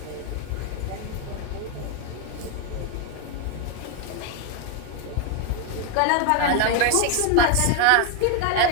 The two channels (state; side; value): different; both; correlation 0.01